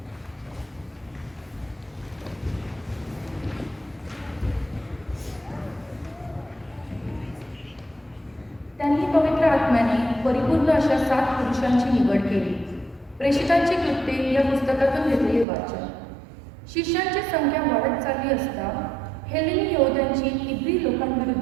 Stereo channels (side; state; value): left; drops out; at 15.5 s